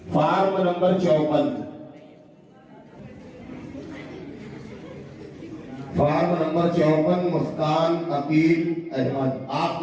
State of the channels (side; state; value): both; identical; correlation 1.00